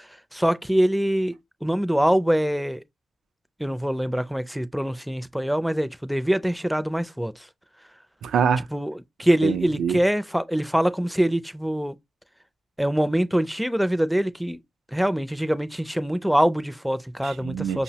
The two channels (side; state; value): both; normal; correlation 0.97